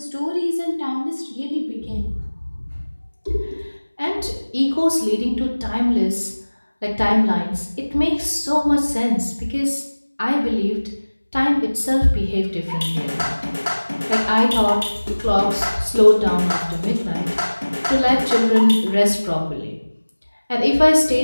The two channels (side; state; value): both; inverted; correlation -1.00